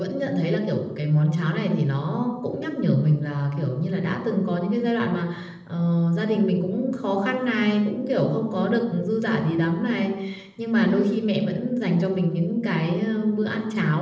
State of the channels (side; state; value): both; identical; correlation 1.00